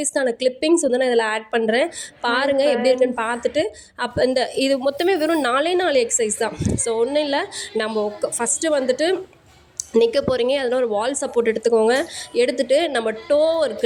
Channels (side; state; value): both; identical; correlation 1.00